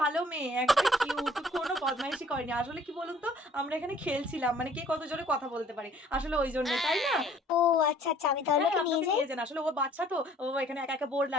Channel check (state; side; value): normal; both; correlation 0.57